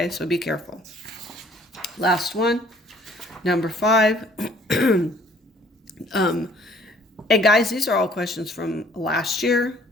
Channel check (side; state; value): both; normal; correlation 0.58